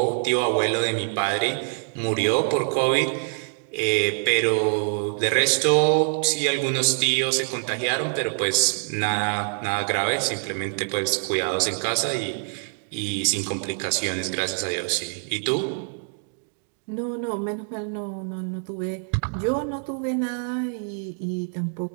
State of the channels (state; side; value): silent; left; digital silence